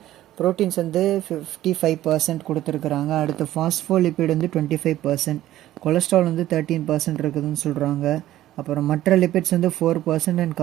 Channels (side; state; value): left; quieter; 14.0 dB